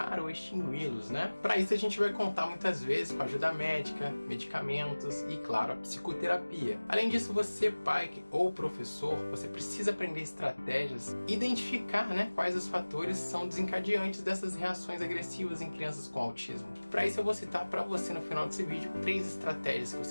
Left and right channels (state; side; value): inverted; both; correlation -1.00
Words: ou extingui-los, né? Para isso a gente vai contar muitas vezes com ajuda médica, medicamentos e, claro, a psicoterapia. Além disso, você, pai ou professor, você precisa aprender estratégias e identificar, quais os fatores são desencadeantes dessas reações agressivas em crianças com autismo. Para isso eu vou citar para você no final desse vídeo 3 estratégias que